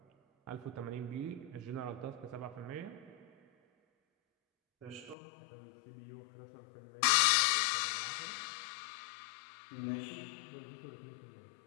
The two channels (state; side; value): drops out; right; at 5.2 s